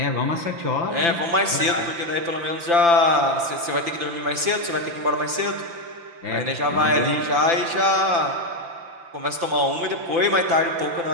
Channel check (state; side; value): late; left; 5.9 ms